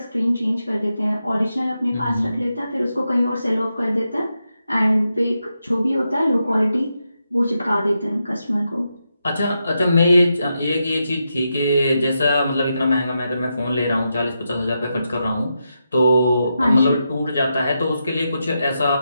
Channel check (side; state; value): both; inverted; correlation -0.86